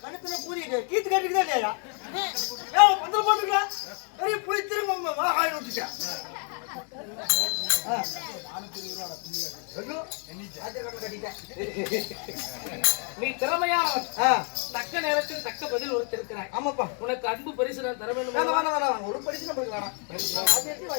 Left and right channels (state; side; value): quieter; right; 39.7 dB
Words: கணத்துல பூரி கீத்து கேட்டுக்கிட்டே இல்லையா? பந்தல் போட்டுக்கலாம். பெரிய புளி திரும்ப ஆகாயம் விட்டுட்டேன். நீ திறமையானவன். தக்க நேரத்தில் தக்க பதில் ஒருத்திருக்கிறாய். ஆமாப்பா. உனக்கு அன்பு பரிசு நான் தர வேண்டும். ஒரு பரிசு நம்மளுக்கு வேணாம்.